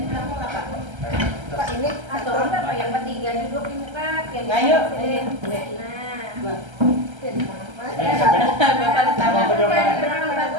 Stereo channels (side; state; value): left; late; 1.3 ms